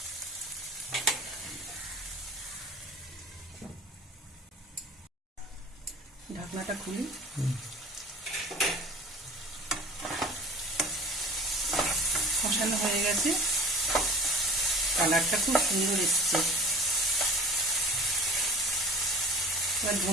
ঢাকনাটা খুলি। কষানো হয়ে গেছে, কালারটা খুব সুন্দর এসছে। এবার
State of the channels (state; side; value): normal; both; correlation 0.41